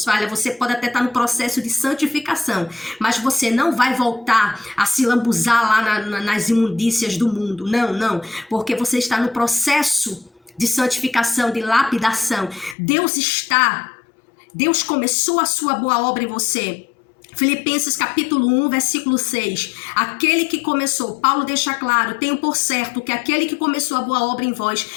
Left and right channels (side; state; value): right; drops out; at 12.8 s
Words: falhas, você pode até estar no processo de santificação, mas você não vai voltar a se lambuzar lá nas imundícias do mundo, não, porque você está no processo de santificação, de lapidação. Deus começou a sua boa obra em você. Filipenses capítulo 1, versículo 6. Aquele que começou, Paulo deixa claro, tenho por certo que aquele que começou a boa obra em vós,